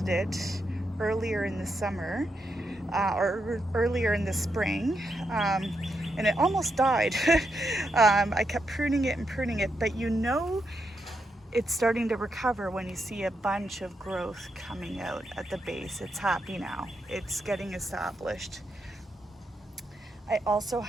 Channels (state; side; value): normal; both; correlation 0.83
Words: it earlier in the summer or earlier in the spring, and it almost died. I kept pruning it, but it's starting to recover when you see a bunch of growth coming out at the base. It's happy now. It's getting established. I also